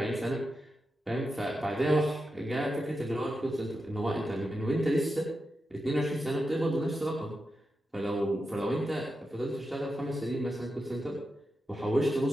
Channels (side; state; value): both; normal; correlation 0.89